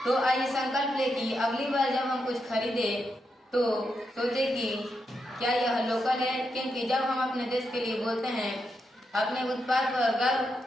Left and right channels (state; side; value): normal; both; correlation 0.84